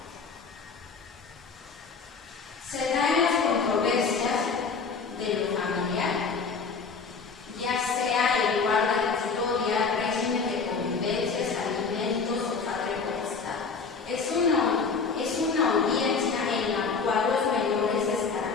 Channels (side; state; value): right; quieter; 5.0 dB